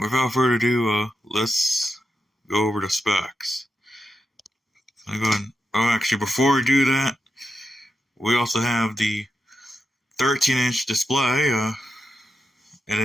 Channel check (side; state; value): both; normal; correlation 0.87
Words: further ado, let's go over the specs. Actually, before we do that, we also have the 13-inch display, and